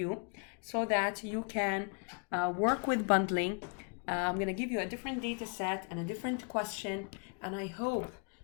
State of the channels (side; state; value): right; quieter; 39.0 dB